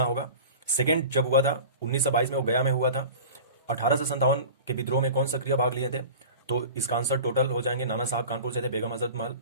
होगा। सेकेंड जब हुआ था 1922 में वो गया में हुआ था। 1857 के विद्रोह में कौन सक्रिय भाग लिए थे? तो इसका आंसर टोटल हो जाएंगे। नाना साहब कानपुर से थे, बेगम हजरत महल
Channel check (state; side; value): inverted; both; correlation -0.37